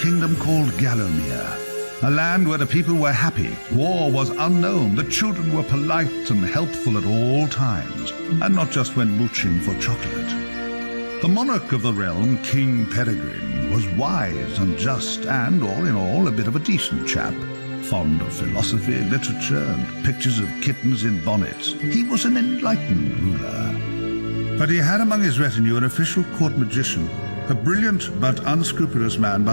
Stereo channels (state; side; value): inverted; both; correlation -1.00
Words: called Gallowmere, a land where the people were happy, war was unknown, the children were polite and helpful at all times, and not just when mooching for chocolate. The monarch of the realm, King Peregrine, was wise and just and, all in all, a bit of a decent chap. Fond of philosophy, literature, and pictures of kittens in bonnets. He was an enlightened ruler. But he had among his retinue an official court magician, a brilliant but unscrupulous man